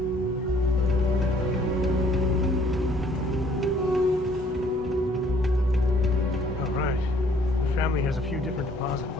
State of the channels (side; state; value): both; normal; correlation 0.61